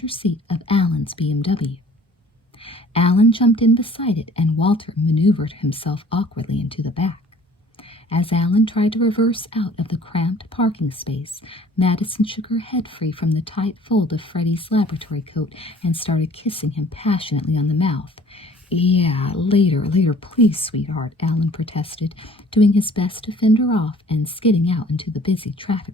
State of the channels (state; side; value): normal; both; correlation 0.52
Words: seat of Alan's BMW. Alan jumped in beside it, and Walter maneuvered himself awkwardly into the back. As Alan tried to reverse out of the cramped parking space, Madison shook her head free from the tight fold of Freddie's laboratory coat and started kissing him passionately on the mouth. Yeah, later, please, sweetheart, Alan protested, doing his best to fend her off and skidding out into the busy